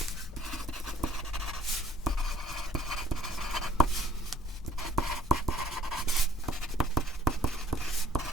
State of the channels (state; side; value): normal; both; correlation 0.58